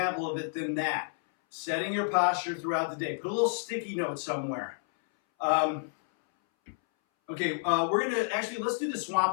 of it than that. Setting your posture throughout the day. Put a little sticky note somewhere. Okay, we're going to, actually, let's do the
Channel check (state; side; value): silent; right; 58 dB below the other